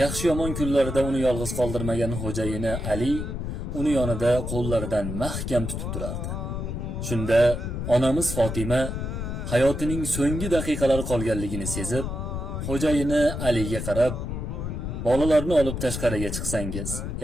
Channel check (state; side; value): noise; left; rumble, 4 dB below the sound